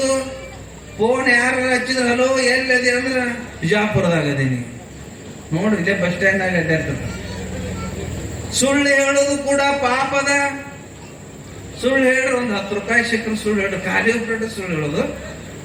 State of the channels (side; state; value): both; identical; correlation 1.00